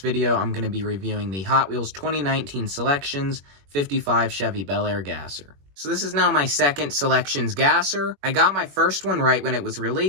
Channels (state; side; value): late; left; 21 ms